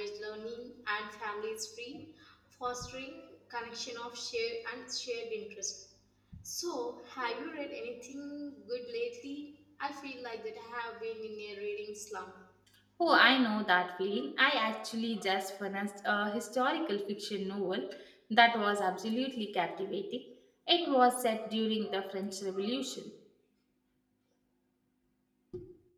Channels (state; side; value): identical; both; correlation 1.00